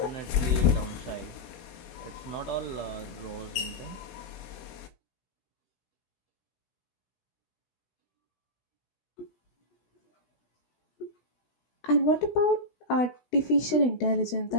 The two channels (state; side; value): late; right; 16 ms